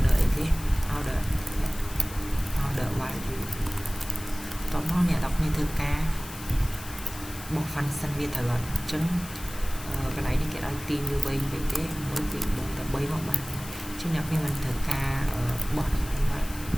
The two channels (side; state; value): left; noise; hiss, 14 dB below the sound